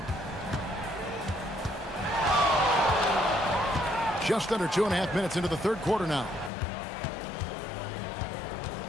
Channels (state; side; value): drops out; right; at 6.5 s